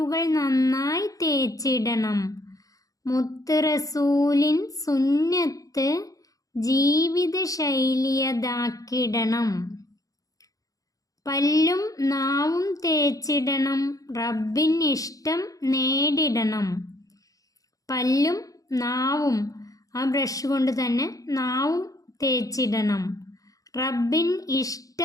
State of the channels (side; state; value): right; late; 0.17 ms